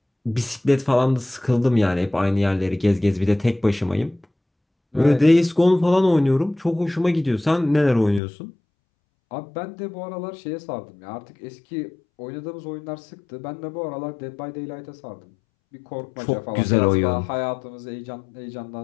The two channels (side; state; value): right; drops out; at 8.2 s